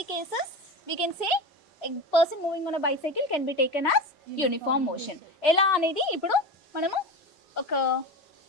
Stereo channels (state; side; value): normal; both; correlation 0.25